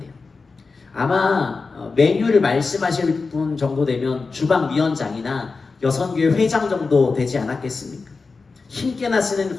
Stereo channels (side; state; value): right; quieter; 4.3 dB